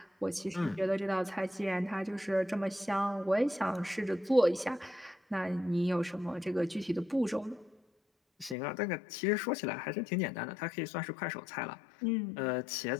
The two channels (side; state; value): right; drops out; at 8.6 s